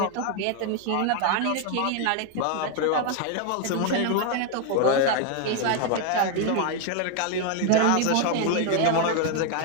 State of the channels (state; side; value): different; both; correlation 0.01